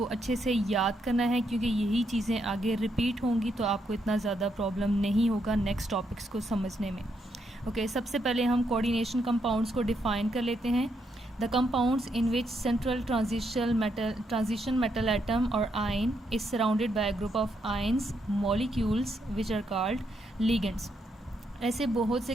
अच्छे से याद करना है, क्योंकि यही चीज़ें आगे रिपीट होंगी तो आपको इतना ज़्यादा प्रॉब्लम नहीं होगा नेक्स्ट टॉपिक्स को समझने में। ओके सबसे पहले हम कोऑर्डिनेशन कंपाउंड्स को डिफ़ाइन कर लेते हैं। The compounds in which central transition metal atom or ion is surrounded by a group of ions molecules which are called ligands। ऐसे बहुत से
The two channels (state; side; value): normal; both; correlation 0.78